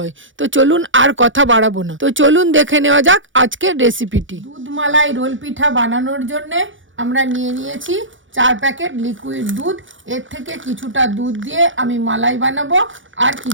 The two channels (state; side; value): late; left; 0.56 ms